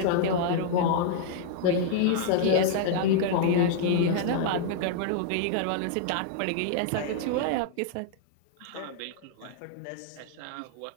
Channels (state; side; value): different; both; correlation 0.00